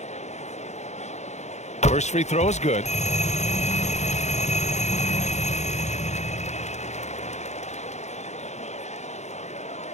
First free throw is good.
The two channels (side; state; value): right; late; 0.33 ms